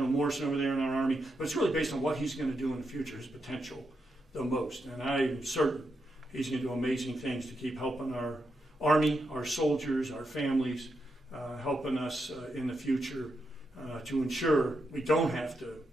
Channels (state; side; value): normal; both; correlation 0.84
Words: Morrison over there in our Army, but it's really based on what he's going to do in the future, his potential the most. And I'm certain he's going to do amazing things to keep helping our Army, our soldiers, our families, helping us in the future to ensure we don't have to